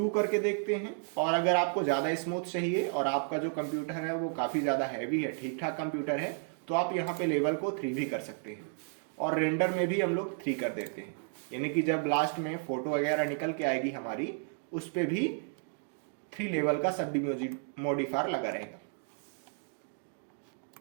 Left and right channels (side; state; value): left; silent; 56 dB below the other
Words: करके देखते हैं। और अगर आपको ज्यादा स्मूथ चाहिए और आपका जो कंप्यूटर है वो काफी ज्यादा हैवी है, ठीक ठाक कंप्यूटर है, तो आप यहाँ पे लेवल को 3 भी कर सकते हैं। और रेंडर में भी हम लोग 3 कर देते हैं, यानी कि जब लास्ट में फोटो वगैरह निकल के आएगी हमारी उस पे भी 3 लेवल का सब मॉडिफायर लगा रहेगा।